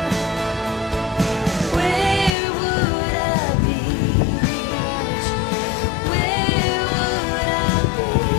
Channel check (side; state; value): right; drops out; at 2.3 s